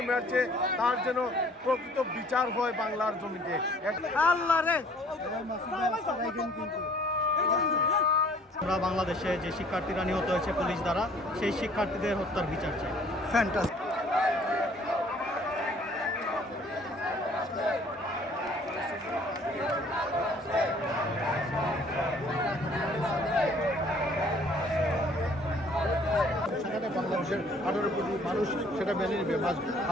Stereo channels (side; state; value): both; normal; correlation 0.56